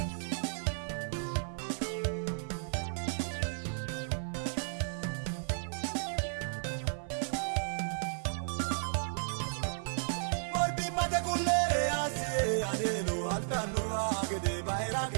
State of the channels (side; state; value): left; silent; 55 dB below the other